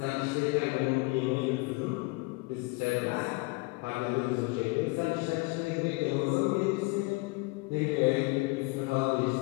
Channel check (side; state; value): right; quieter; 26.1 dB